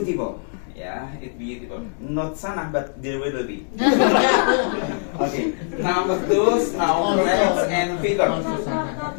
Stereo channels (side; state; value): right; silent; 63 dB below the other